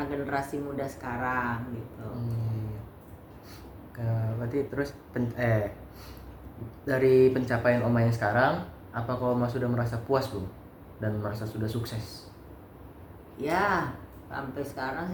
generasi muda sekarang gitu. Berarti terus dari pencapaian Oma yang sekarang, apakah Oma sudah merasa puas belum dan merasa sudah sukses? Ya, sampai sekarang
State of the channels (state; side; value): identical; both; correlation 1.00